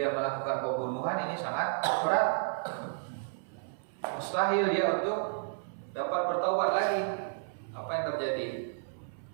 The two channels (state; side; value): silent; left; 56 dB below the other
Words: melakukan pembunuhan, ini sangat berat. Mustahil dia untuk dapat bertaubat lagi. Apa yang terjadi?